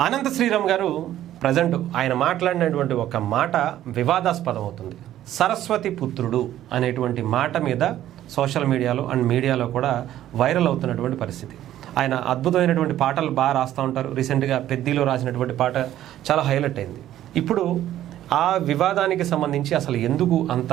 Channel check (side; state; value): left; quieter; 12.6 dB